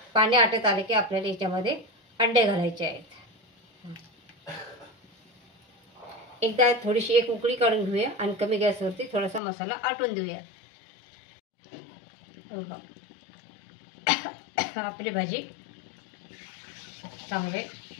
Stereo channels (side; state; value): right; drops out; at 9.4 s